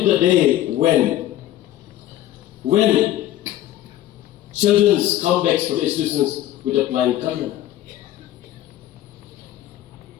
the day when children come back for the institutions with a flying color.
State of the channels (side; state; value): right; quieter; 13.4 dB